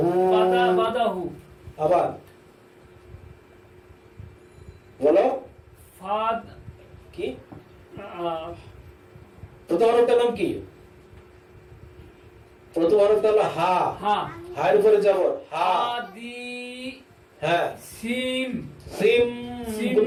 বাদা বাদাহু আবার বলো ফাদ কি আহ, প্রথম হরফটার নাম কি? প্রথম হরফটা হলো হা। হা হায়ের উপরে যাব হা। হাদি হ্যাঁ, সিম সিম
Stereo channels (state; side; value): identical; both; correlation 1.00